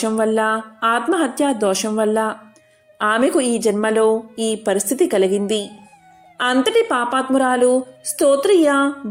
వల్ల, ఆత్మహత్యా దోషం వల్ల ఆమెకు ఈ జన్మలో ఈ పరిస్థితి కలిగింది. అంతటి పాపాత్మురాలు స్తోత్రియ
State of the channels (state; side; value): identical; both; correlation 1.00